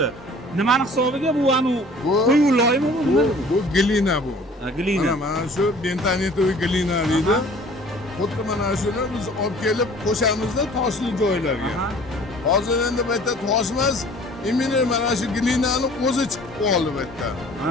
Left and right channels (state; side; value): normal; both; correlation 0.50